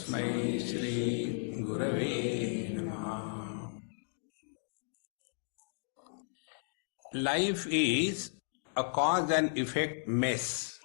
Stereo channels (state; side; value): silent; right; digital silence